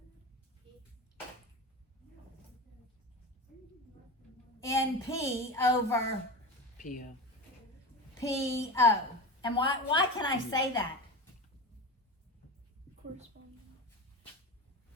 NP over PO. PO. And why can I say that? Corresponding.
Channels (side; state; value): both; normal; correlation 0.25